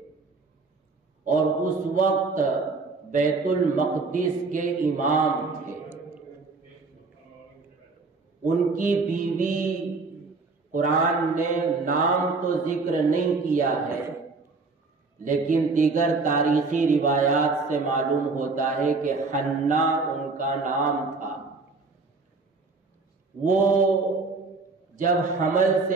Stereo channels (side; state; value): left; quieter; 4.0 dB